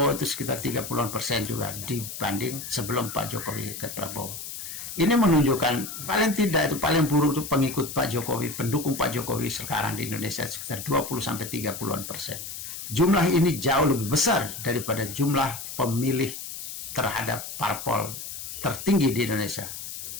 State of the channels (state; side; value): noise; left; hiss, 9 dB below the sound